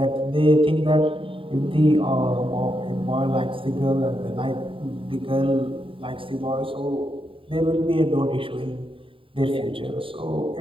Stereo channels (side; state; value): left; late; 0.25 ms